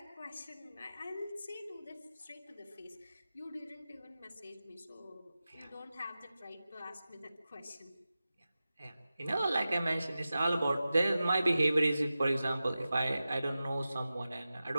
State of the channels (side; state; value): both; inverted; correlation -0.94